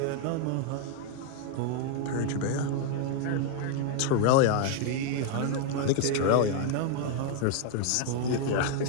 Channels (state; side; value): different; both; correlation 0.00